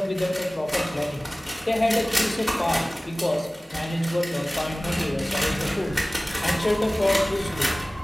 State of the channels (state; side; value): normal; both; correlation 0.98